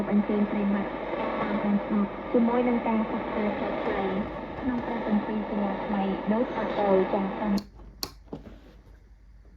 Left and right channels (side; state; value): both; identical; correlation 1.00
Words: ពអញ្ជើញប្រិមត្តតាមអានស្ដាប់ជាមួយនឹងការសិក្សាខ្លីៗក្នុងព្រះគម្ពីរសិលាថ្មីដូចតទៅចា៎សូម